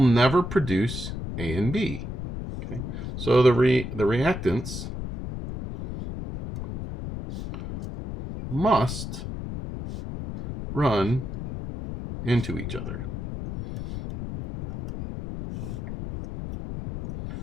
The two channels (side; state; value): left; noise; rumble, 7 dB below the sound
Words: produce A and B. Okay, so the reactants must run into each other.